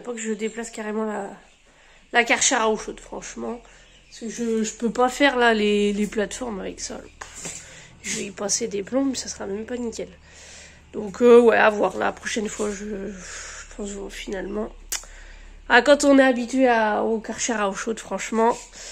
pas que je déplace carrément la Karcher à eau chaude, franchement. Parce que je peux pas faire là les plateformes avec ça. Je vais y passer des plombs, ça sera même pas nickel. Donc ouais, à voir la prochaine fois, je pense finalement. Ah, quand on est habitué au Karcher à eau chaude, franchement,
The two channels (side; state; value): both; identical; correlation 1.00